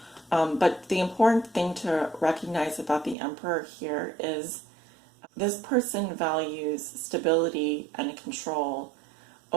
But the important thing to recognize about the Emperor here is this person values stability and control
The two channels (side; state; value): left; drops out; at 3.2 s